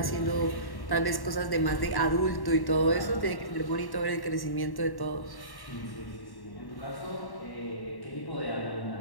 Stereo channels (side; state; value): right; late; 1.1 ms